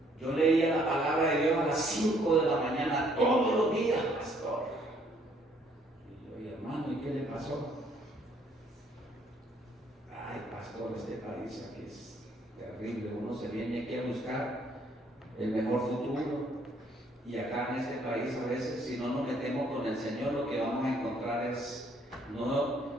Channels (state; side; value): normal; both; correlation 0.65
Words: Yo leía la palabra de Dios a las 5 de la mañana todos los días, pastor. Y yo, hermano, ¿y qué le pasó? Ay, pastor, este país aquí es terrible. Uno se viene aquí a buscar el mejor futuro. Y acá en este país a veces, si no nos metemos con el Señor, lo que vamos a encontrar es